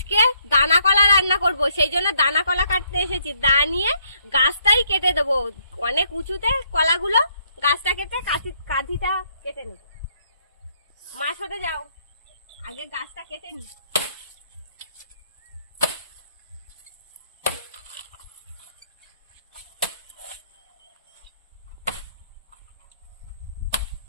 দানা কলা রান্না করব, সেই জন্য দানা কলা কাটতে এসেছি। দা নিয়ে গাছটাই কেটে দেবো, অনেক উঁচুতে কলাগুলো। গাছটা কেটে কাঁধিটা কেটে নেব। মাছ হতে যাও, আগে গাছটা কেটে নি।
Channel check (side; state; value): both; inverted; correlation -0.70